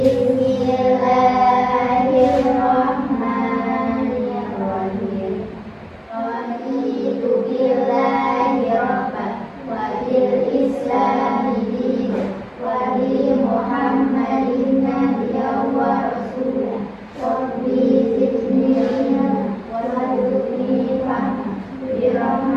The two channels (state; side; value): identical; both; correlation 1.00